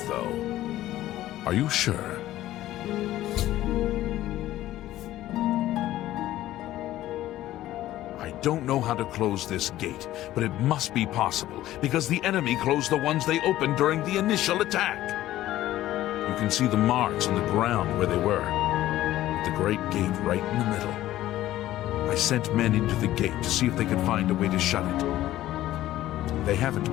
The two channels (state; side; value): quieter; right; 14.5 dB